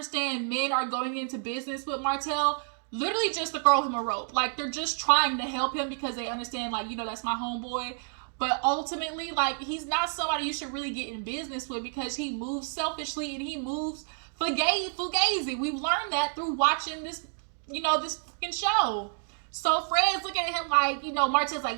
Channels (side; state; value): left; silent; 58 dB below the other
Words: men are going into business with Martell literally just to throw him a rope. Like, they're just trying to help him because they understand, like, that's my homeboy. But ultimately, like, he's not somebody you should really get in business with because he moves selfishly and he moves fugazi. We've learned that through watching this, this fucking show. So Fred's looking at him like, Martell's like,